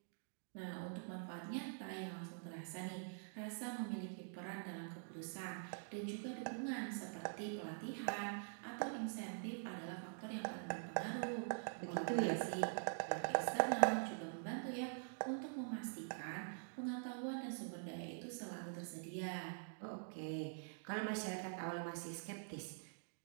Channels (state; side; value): silent; left; digital silence